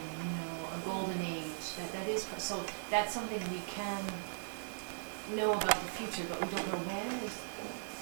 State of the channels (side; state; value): left; silent; digital silence